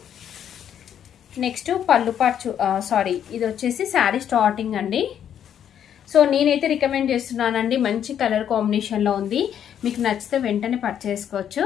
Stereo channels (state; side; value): quieter; right; 9.4 dB